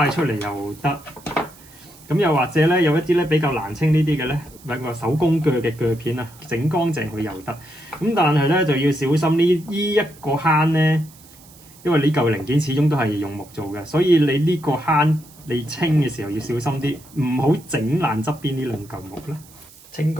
佢出嚟又得。咁又或者咧，有一啲咧比較難清呢啲嘅咧，揾個手工鋸嘅鋸片啊，整乾淨佢又得。咁但係咧就要小心呢一個坑咧，因為呢嚿零件始終都係用木做嘅，所以你呢個坑你清嘅時候要小心啲，唔好整爛側邊呢兩嚿木啦。清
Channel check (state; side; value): noise; right; hiss, 23 dB below the sound